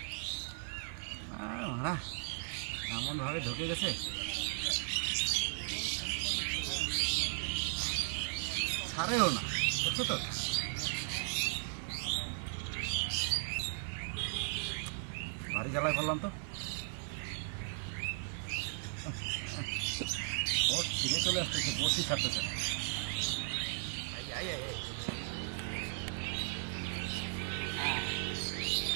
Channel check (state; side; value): silent; left; 53 dB below the other